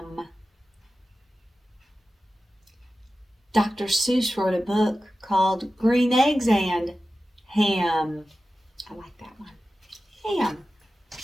Dr. Seuss wrote a book called Green Eggs and Ham. I like that one. Ham.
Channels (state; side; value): normal; both; correlation 0.94